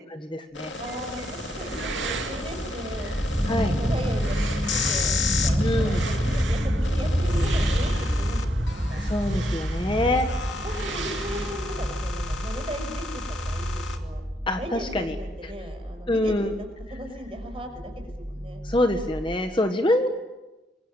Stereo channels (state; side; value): normal; both; correlation 0.76